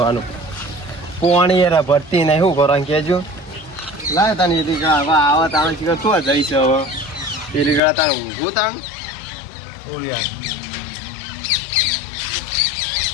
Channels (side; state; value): right; drops out; at 7.8 s